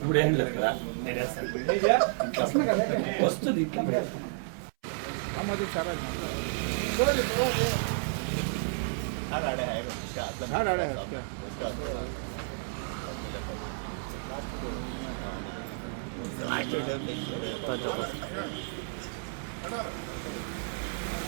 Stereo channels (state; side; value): silent; left; 57 dB below the other